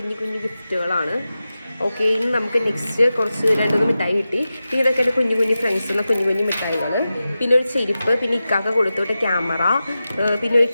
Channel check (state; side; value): inverted; both; correlation -0.93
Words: കുഞ്ഞു ഗിഫ്റ്റുകളാണ്. ഓക്കെ, ഇനി നമുക്ക് നെക്സ്റ്റ് കുറച്ച് 2-3 മിഠായി കിട്ടി. പിന്നെ ഇതൊക്കെ എൻ്റെ കുഞ്ഞു കുഞ്ഞു ഫ്രണ്ട്സുള്ള കുഞ്ഞു കുഞ്ഞു മിഠായികൾ. പിന്നെ ഒരു ചെരുപ്പ്, പിന്നെ ഇക്കാക്ക കൊടുത്തോട്ടെ ക്യാമറ, പിന്നെ ഒരു